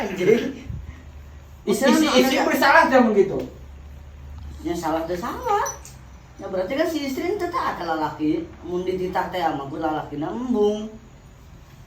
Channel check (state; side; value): identical; both; correlation 1.00